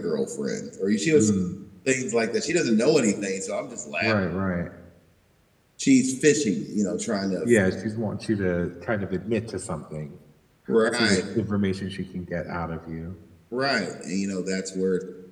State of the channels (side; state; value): both; identical; correlation 1.00